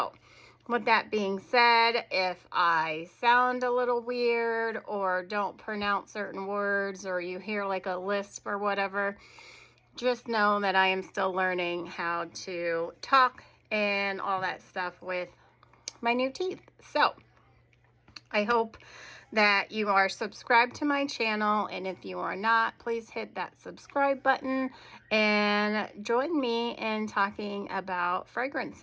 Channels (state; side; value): identical; both; correlation 1.00